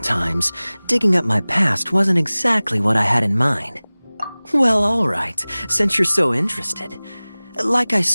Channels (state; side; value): inverted; both; correlation -1.00